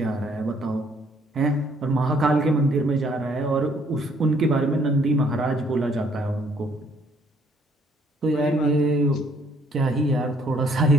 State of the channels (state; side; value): normal; both; correlation 0.64